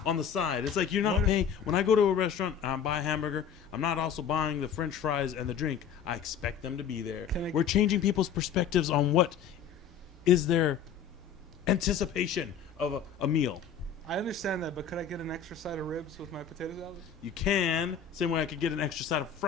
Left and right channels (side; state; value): right; quieter; 7.6 dB